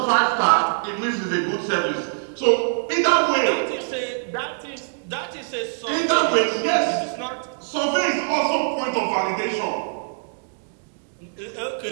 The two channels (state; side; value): silent; left; digital silence